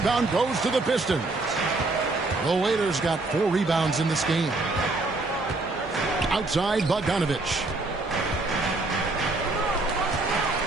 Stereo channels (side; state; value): left; quieter; 3.2 dB